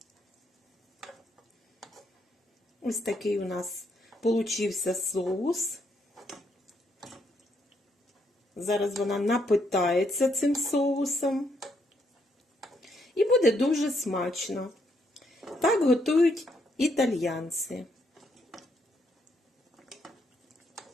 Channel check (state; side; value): normal; both; correlation 0.75